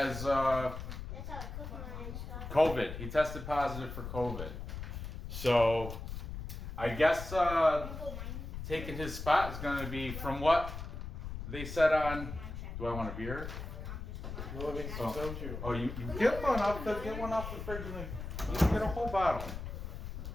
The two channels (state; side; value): noise; left; rumble, 7 dB below the sound